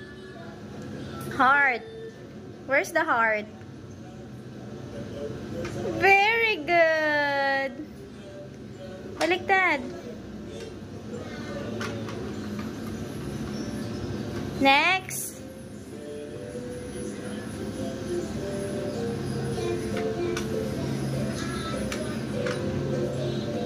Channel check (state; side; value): identical; both; correlation 1.00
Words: Heart. Where's the heart? Very good. Baliktad. Next.